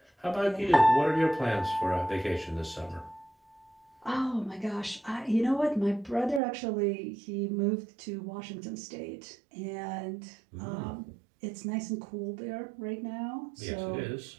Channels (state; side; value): drops out; left; at 6.4 s